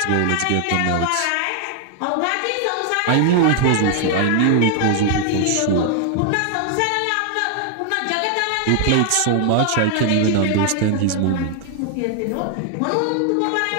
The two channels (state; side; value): different; both; correlation 0.00